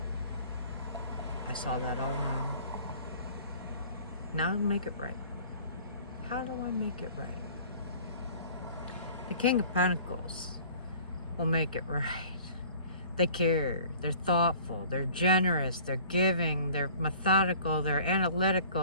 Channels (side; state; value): both; inverted; correlation -0.49